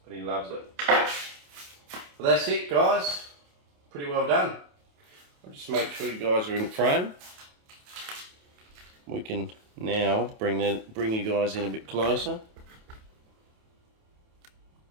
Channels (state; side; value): late; left; 28 ms